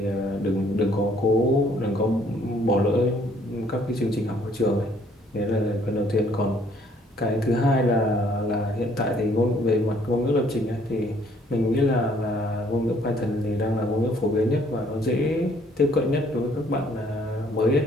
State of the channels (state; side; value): normal; both; correlation 0.63